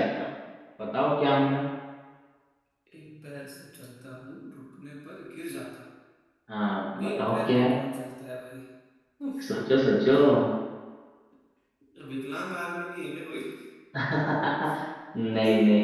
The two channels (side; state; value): both; identical; correlation 1.00